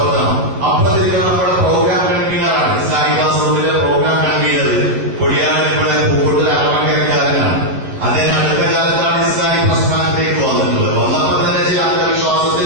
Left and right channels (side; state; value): left; late; 10 ms